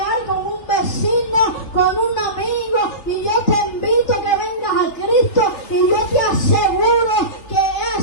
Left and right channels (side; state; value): right; late; 3.3 ms